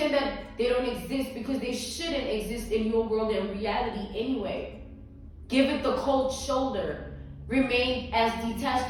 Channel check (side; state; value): both; identical; correlation 1.00